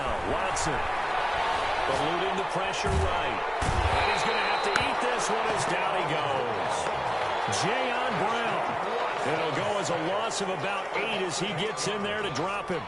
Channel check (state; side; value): identical; both; correlation 1.00